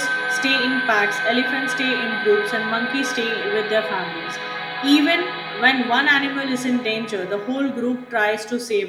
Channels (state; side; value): identical; both; correlation 1.00